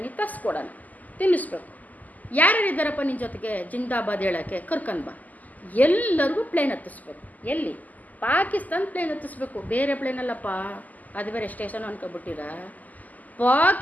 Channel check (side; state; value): right; late; 0.080 ms